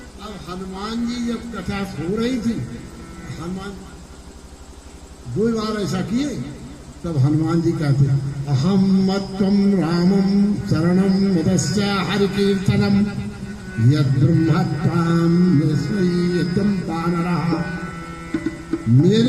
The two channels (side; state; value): both; identical; correlation 1.00